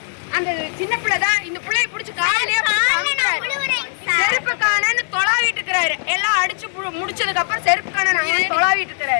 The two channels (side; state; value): right; silent; 66 dB below the other